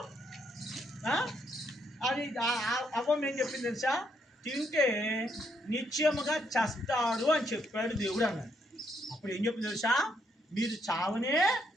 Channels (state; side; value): normal; both; correlation 0.75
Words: అది. అవ్వం ఏం చెప్పింది తెలుసా? తింటే నిత్యముగా చస్తారు అని చెప్పాడు దేవుడు అన్నాడు. అప్పుడు ఏం చెప్పింది తెలుసా? మీరు